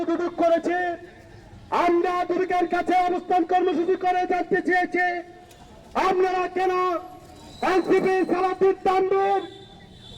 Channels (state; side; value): identical; both; correlation 1.00